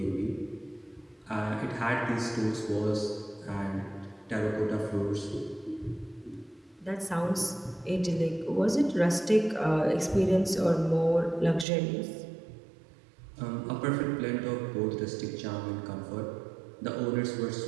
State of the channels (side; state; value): left; drops out; at 11.7 s